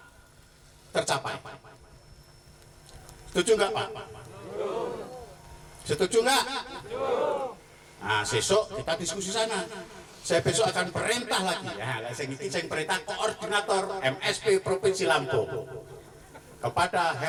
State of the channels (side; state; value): both; identical; correlation 1.00